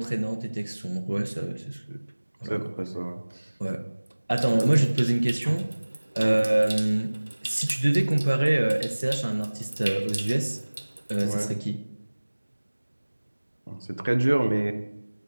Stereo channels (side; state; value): both; inverted; correlation -1.00